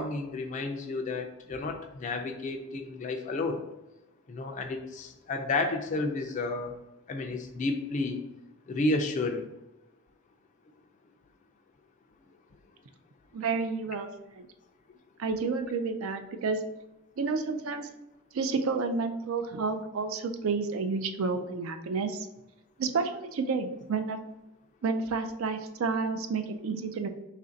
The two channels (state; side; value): normal; both; correlation 0.21